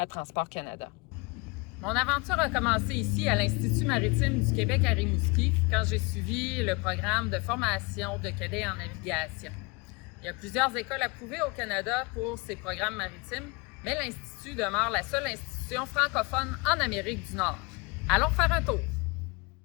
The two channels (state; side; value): quieter; right; 27.9 dB